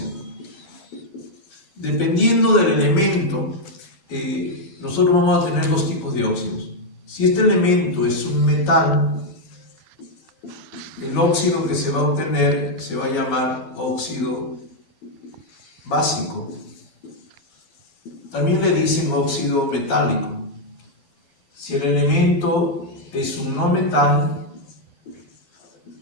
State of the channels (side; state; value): right; late; 13 ms